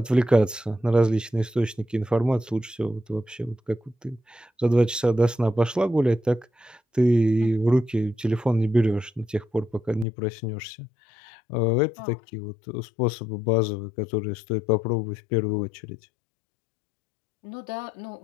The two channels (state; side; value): drops out; right; at 10.1 s